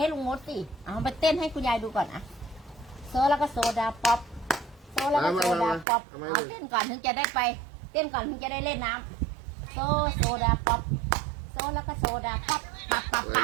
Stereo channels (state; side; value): drops out; left; at 5.9 s